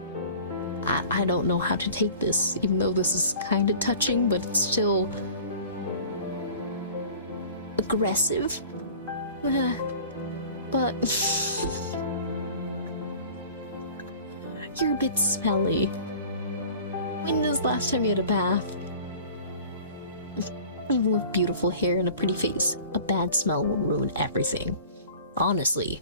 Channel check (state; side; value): inverted; both; correlation -0.43